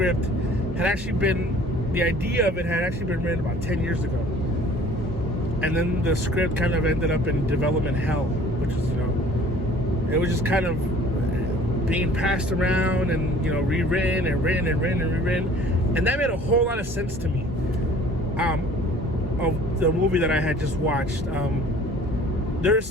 had actually been, the idea of it had actually been written about 10 years ago. And then the script kind of ended up in development hell, which is, it was just kind of being passed around and, rewritten and written and written and rewritten. And that made a whole lot of sense to me, of the movie that I had just watched. There's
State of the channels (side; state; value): both; normal; correlation 0.51